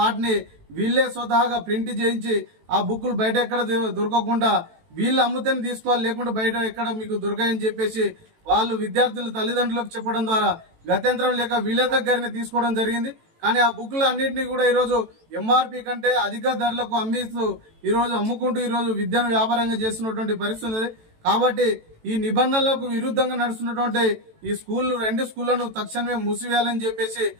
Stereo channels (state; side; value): late; left; 18 ms